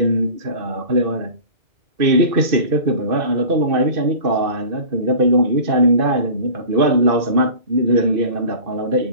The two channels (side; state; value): left; late; 2.6 ms